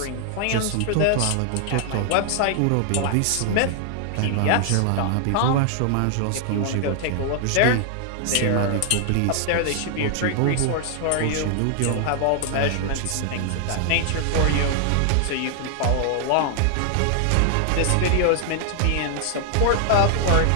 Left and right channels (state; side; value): different; both; correlation 0.00